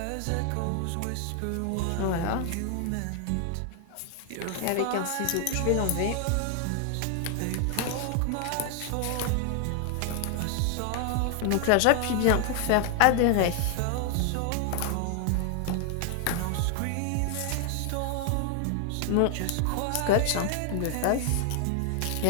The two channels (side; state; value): both; different; correlation 0.00